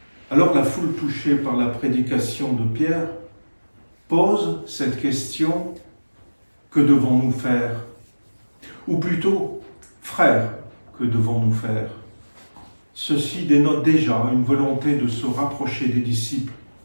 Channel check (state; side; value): inverted; both; correlation -1.00